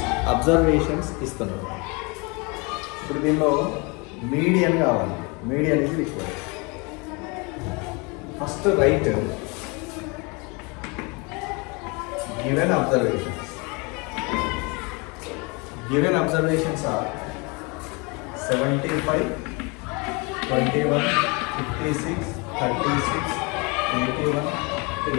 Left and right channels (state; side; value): quieter; right; 29.4 dB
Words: observations ఇస్తున్నారు. ఇప్పుడు దీనిలో మీడియన్ కావాలి. మీడియన్ ఇది required. First right given observations. Given observations are 75, 21, 56, 36, 81,